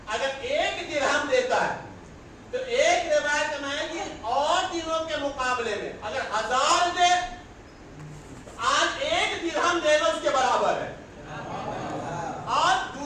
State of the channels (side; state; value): both; identical; correlation 1.00